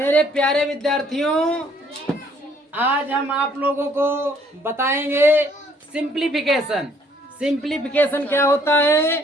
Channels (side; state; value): both; normal; correlation 0.63